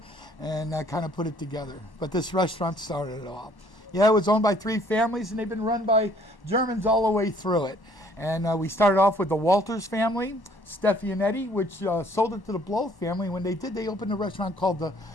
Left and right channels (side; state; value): right; late; 1.1 ms